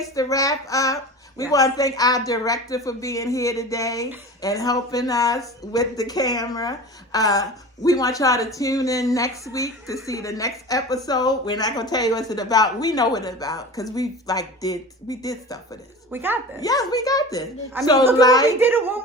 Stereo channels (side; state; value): both; normal; correlation 0.34